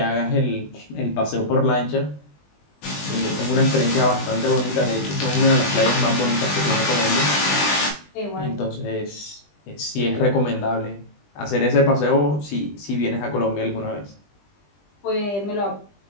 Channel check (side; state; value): right; late; 20 ms